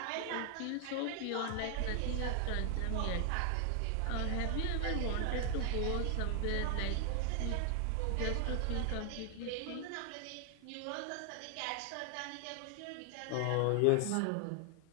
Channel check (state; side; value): different; both; correlation 0.00